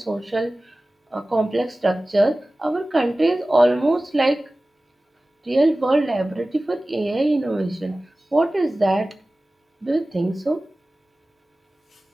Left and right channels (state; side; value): normal; both; correlation 0.97